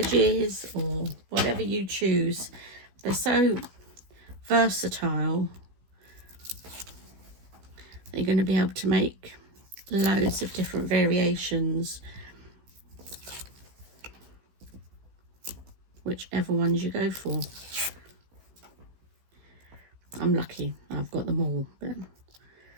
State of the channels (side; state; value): left; late; 16 ms